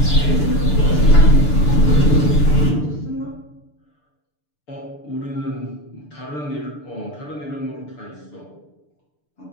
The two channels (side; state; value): right; late; 6.8 ms